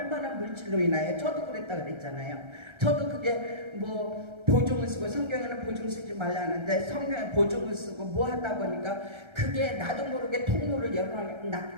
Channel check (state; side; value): late; left; 1.3 ms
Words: 물질로 인하여 저도 그랬다 그랬잖아요. 저도 그게 뭐 보증을 쓰고 성경에는 보증 쓰지 말라 하는데 성경에 보증을 쓰고 뭐 하다 보니까 그게 나도 모르게 통로를